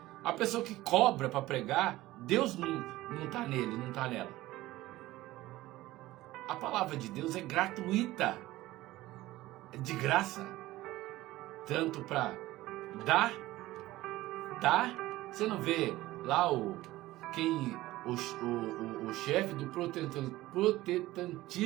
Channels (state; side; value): quieter; left; 17.2 dB